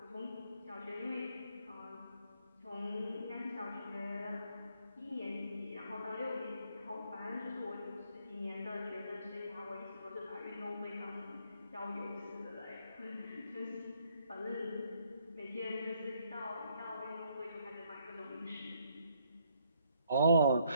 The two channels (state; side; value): inverted; both; correlation -0.70